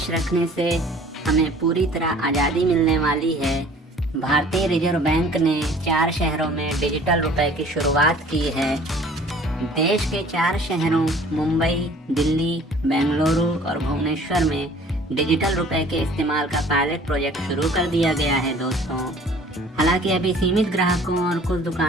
रखने से हमें पूरी तरह आज़ादी मिलने वाली है। भारतीय रिजर्व बैंक ने 4 शहरों में डिजिटल रुपए की शुरुआत की है। देश के 4 शहरों मुंबई, दिल्ली, बेंगलुरु और भुवनेश्वर में डिजिटल रुपए के इस्तेमाल का पायलट प्रोजेक्ट शुरू कर दिया गया है दोस्तों। हालांकि अभी सीमित ग्राहकों और कुछ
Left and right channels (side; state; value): both; normal; correlation 0.51